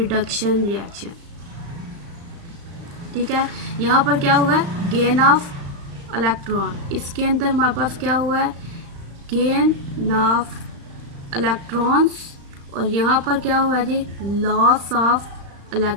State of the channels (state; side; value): late; left; 35 ms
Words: रिएक्शन, ठीक है। यहाँ पर क्या हुआ है, गेन ऑफ इलेक्ट्रॉन, इसके अंदर हमारे पास क्या हुआ है, गेन ऑफ इलेक्ट्रॉन्स, और यहाँ पर क्या हुआ है जी, लॉस ऑफ